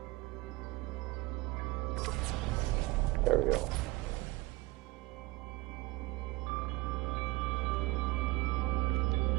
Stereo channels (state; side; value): quieter; left; 20.4 dB